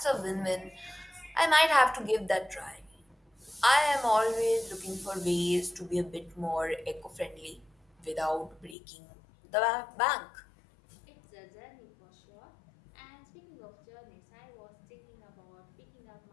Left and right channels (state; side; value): drops out; right; at 8.8 s